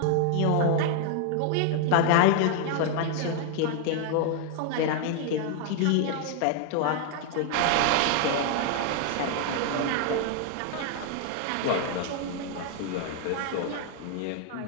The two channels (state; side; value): different; both; correlation 0.00